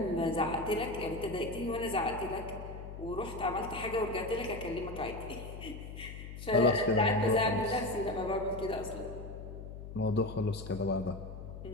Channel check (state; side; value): noise; left; hum, 10 dB below the sound